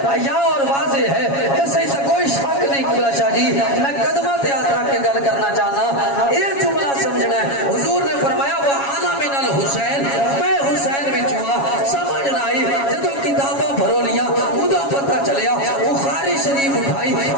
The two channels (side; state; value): right; late; 7.2 ms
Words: حیا اور واضح ہے اس سے کوئی شک نہیں قبلہ شاہ جی میں قدمہ تے ہاتھ رکھ کے گل کرنا چاہنا یہ جملہ سمجھنا ہے حضور نے فرمایا وہ آنا من الحسین میں حسین وچوں سمجھ نہ آئی جدو کتاباں بھرو لیا ادا پتہ چلیا بخاری شریف اٹھائی